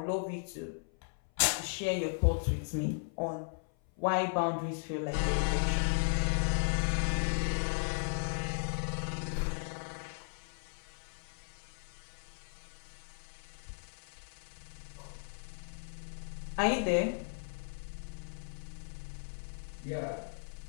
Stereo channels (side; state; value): right; silent; 54 dB below the other